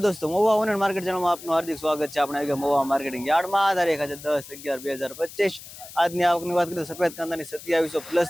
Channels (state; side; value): noise; left; hiss, 16 dB below the sound